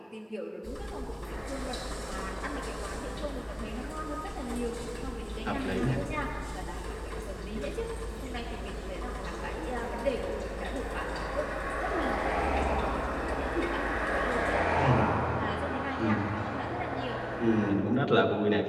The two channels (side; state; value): both; identical; correlation 1.00